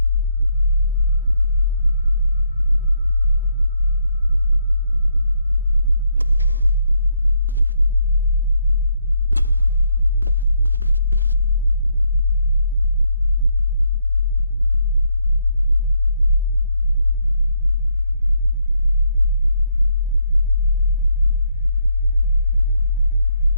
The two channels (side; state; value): both; inverted; correlation -0.75